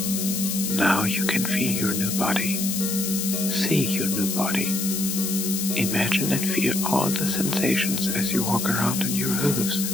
Now you can feel your new body, see your new body. Imagine and feel all the sensations as you walk around on your hooves.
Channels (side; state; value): left; noise; hiss, 2 dB below the sound